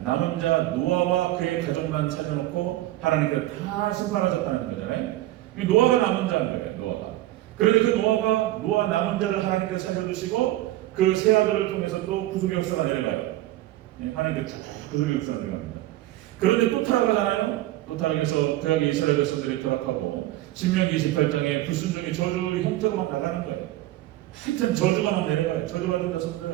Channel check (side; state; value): left; quieter; 15.8 dB